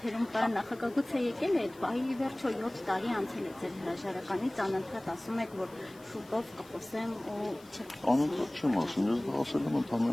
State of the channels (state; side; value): noise; left; hiss, 25 dB below the sound